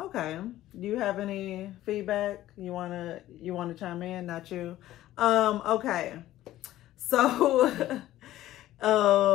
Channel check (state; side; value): quieter; right; 14.4 dB